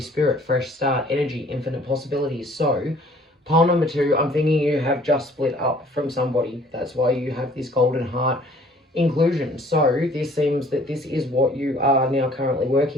fresh start, energy, infinite possibilities. So pile number 2, I'm thinking you have just split up from somebody. That's why you have this golden heart inclusion. So this seems that this is what you are now currently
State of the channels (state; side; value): normal; both; correlation 0.55